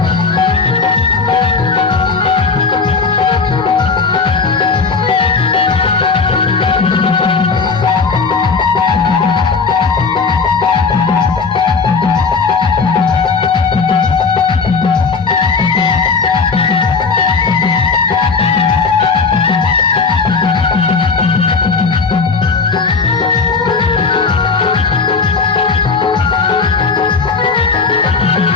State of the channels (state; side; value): quieter; right; 4.7 dB